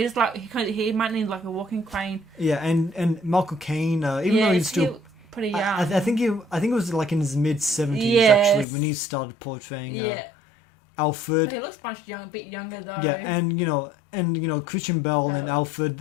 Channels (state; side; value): drops out; right; at 8.7 s